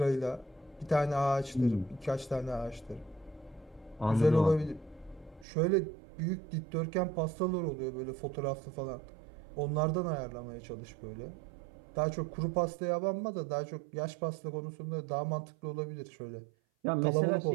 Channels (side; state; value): left; drops out; at 5.5 s